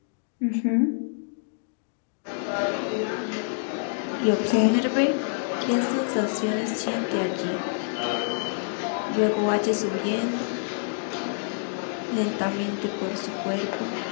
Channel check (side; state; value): right; silent; digital silence